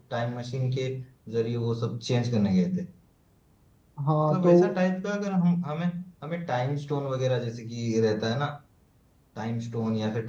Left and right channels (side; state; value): both; identical; correlation 1.00